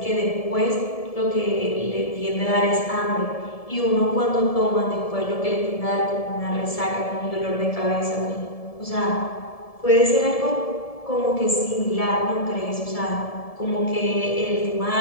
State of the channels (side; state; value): right; late; 1.7 ms